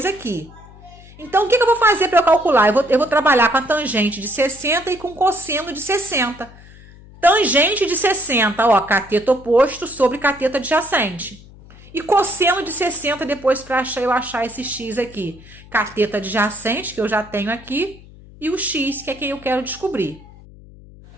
aqui. Então, o que eu vou fazer para eu calcular? Eu vou trabalhar com a tangente de 60 e com o cosseno de 60. Tangente de 60, ó, cateto oposto sobre cateto adjacente. E cosseno de 60 depois para eu achar esse x aqui. Cateto adjacente, que eu já tenho aqui, e o x, que é quem eu quero descobrir.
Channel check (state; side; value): noise; left; hum, 21 dB below the sound